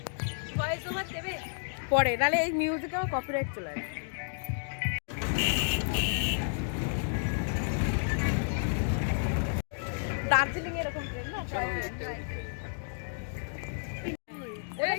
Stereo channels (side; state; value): right; silent; digital silence